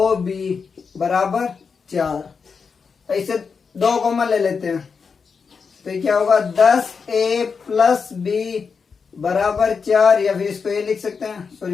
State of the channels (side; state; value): right; quieter; 5.5 dB